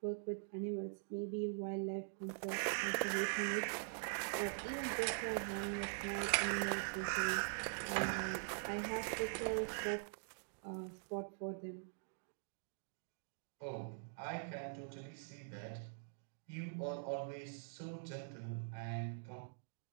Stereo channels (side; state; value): left; silent; digital silence